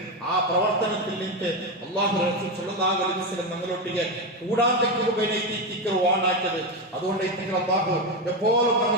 ആ പ്രവർത്തനത്തിൽ നിന്ന് അല്ലാഹു റസൂൽ സ്വല്ലല്ലാഹു അലൈഹി വസല്ലം ഞങ്ങളൊട്ടിಗೆ കൂടാതെക്ക് വാണാക്കിയത്. അതുകൊണ്ട് അല്ലാഹു എപ്പോഴും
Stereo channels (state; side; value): normal; both; correlation 0.12